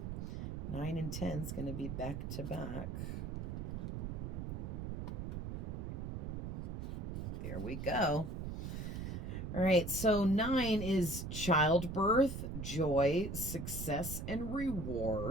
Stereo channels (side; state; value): right; noise; rumble, 4 dB below the sound